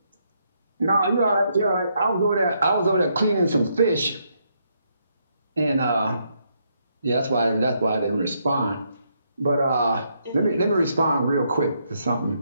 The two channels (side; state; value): both; inverted; correlation -0.76